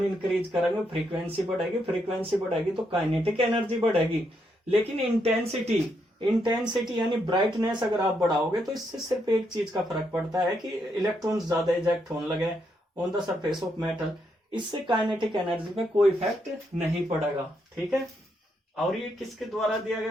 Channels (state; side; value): normal; both; correlation 0.78